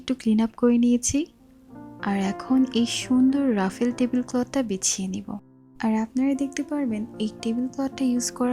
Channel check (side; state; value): both; identical; correlation 1.00